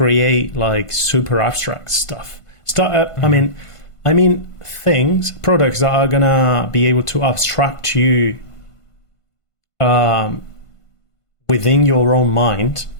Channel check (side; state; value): right; late; 1.5 ms